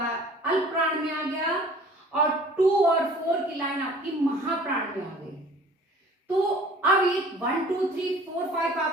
अल्प प्राण में आ गया और 2 और 4 की लाइन आपकी महाप्राण में आ गई। तो अब ये 1, 2, 3, 4, 5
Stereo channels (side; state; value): both; normal; correlation 0.49